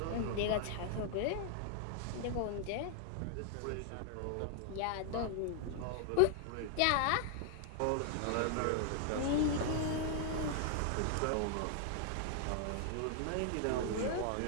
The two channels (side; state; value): both; different; correlation 0.00